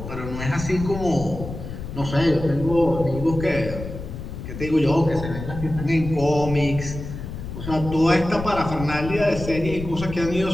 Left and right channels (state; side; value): noise; left; rumble, 9 dB below the sound